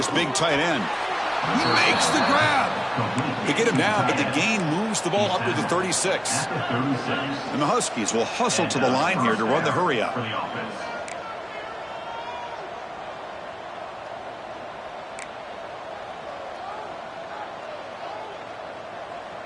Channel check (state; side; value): identical; both; correlation 1.00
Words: big tight end. He makes the grab. They get him down, but the gain moves the ball up to the 36. And the Huskies will hustle to the line here to run the hurry up.